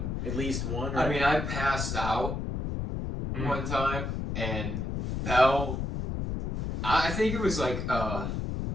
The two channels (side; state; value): left; noise; rumble, 3 dB below the sound